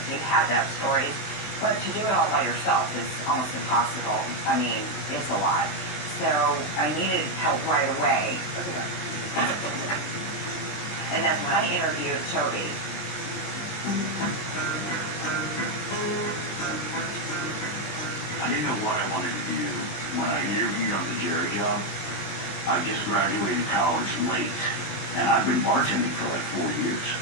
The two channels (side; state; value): right; late; 19 ms